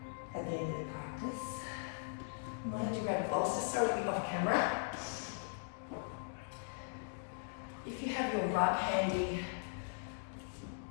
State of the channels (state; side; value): silent; right; digital silence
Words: at the end of the practice. I might have to grab a bolster, sorry to be off camera. If you have your rug handy,